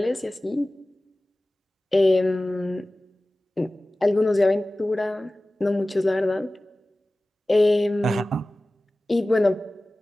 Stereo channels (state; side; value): normal; both; correlation 0.97